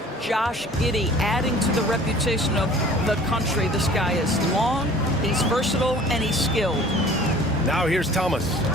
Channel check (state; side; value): normal; both; correlation 0.48